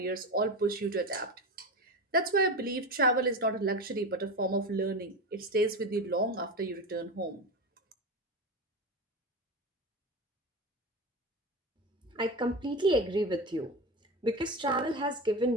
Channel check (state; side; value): normal; both; correlation 0.22